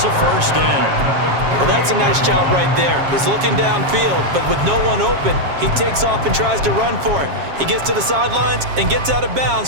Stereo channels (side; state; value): left; late; 7.4 ms